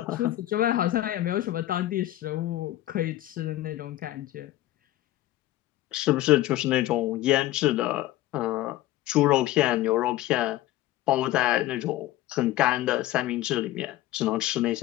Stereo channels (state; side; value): quieter; right; 15.2 dB